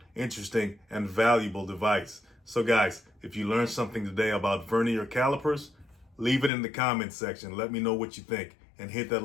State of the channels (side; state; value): right; drops out; at 6.5 s